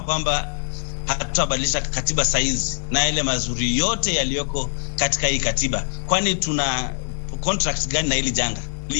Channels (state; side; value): silent; right; digital silence